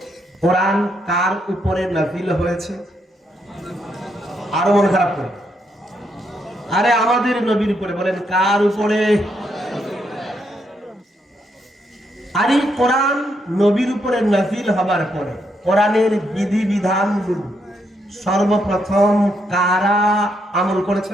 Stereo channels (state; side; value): normal; both; correlation 0.77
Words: কোরআন কার উপরে নাযিল হয়েছে? আরো মন খারাপ করে, আরে আমাদের নবীর উপরে। বলেন কার উপরে? আরে কোরআন নবীর উপরে নাযিল হবার পরে কোরআনের বিধি বিধানগুলো সর্বপ্রথম কারা আমল